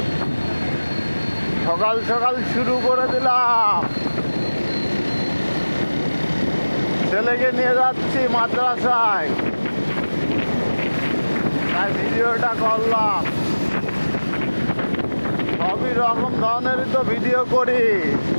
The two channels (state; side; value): inverted; both; correlation -1.00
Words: সকাল সকাল শুরু করে দিলাম, ছেলেকে নিয়ে যাচ্ছি মাদ্রাসায়, তাই ভিডিওটা করলাম। সবই রকম ধরনেরই তো ভিডিও করি।